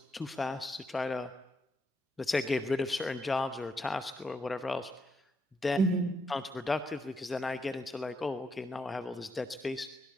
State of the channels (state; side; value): normal; both; correlation 0.80